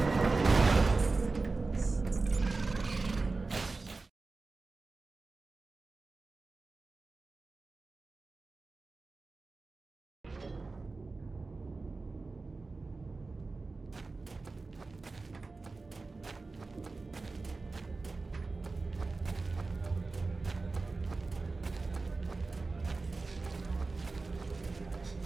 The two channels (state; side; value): quieter; left; 3.7 dB